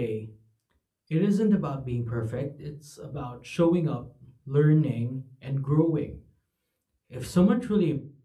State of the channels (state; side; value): identical; both; correlation 1.00